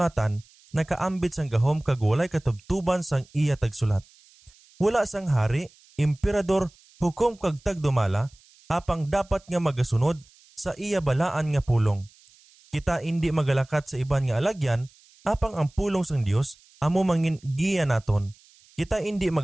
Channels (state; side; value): noise; right; hiss, 28 dB below the sound